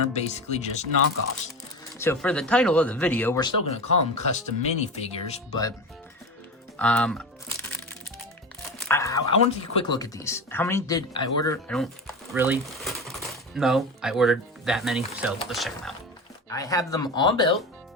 basically just knockoffs. So for the title of the video, we're still going to call them custom minifigures, but I want to take a quick look at these. How many did I order? I don't really know. I ordered that many, so let's check them out. I have them all built.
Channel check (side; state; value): both; normal; correlation 0.26